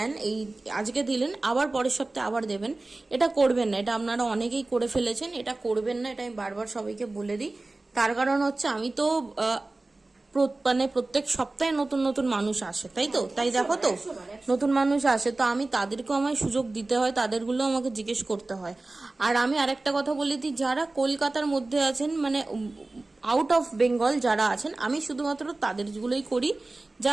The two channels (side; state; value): left; quieter; 3.1 dB